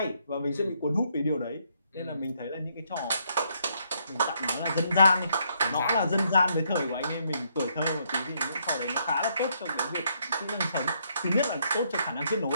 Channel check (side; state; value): both; inverted; correlation -0.72